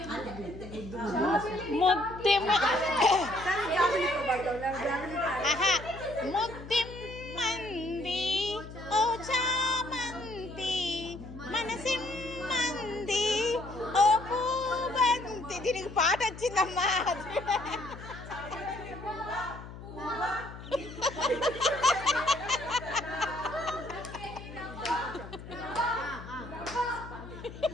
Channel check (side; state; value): left; noise; hum, 13 dB below the sound